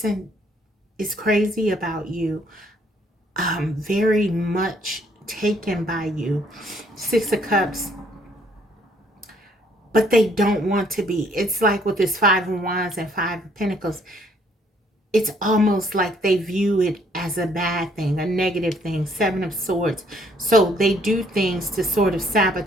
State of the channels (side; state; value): both; normal; correlation 0.65